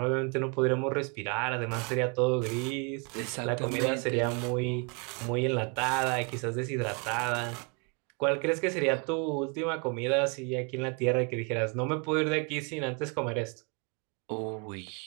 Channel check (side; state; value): left; quieter; 34.2 dB